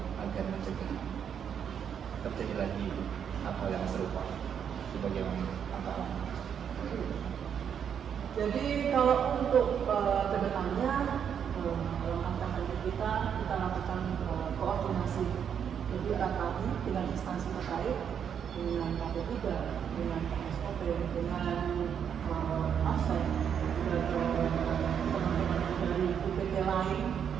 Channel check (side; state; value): left; quieter; 8.1 dB